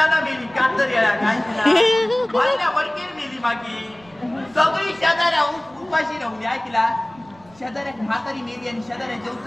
मेली कातर येळा काय तिला वडकेर मेली मागे सगळी शेजाऱ्या उपाशी राहून ऐकला शेजाऱ्यात म्हातारी मेली आणि शेजाऱ्या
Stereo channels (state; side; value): noise; right; rumble, 28 dB below the sound